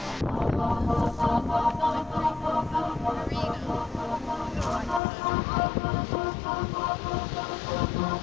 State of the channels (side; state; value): right; drops out; at 5.0 s